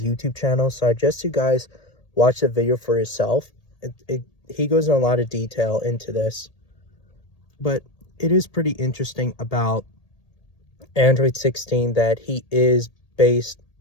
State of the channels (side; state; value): right; late; 1.8 ms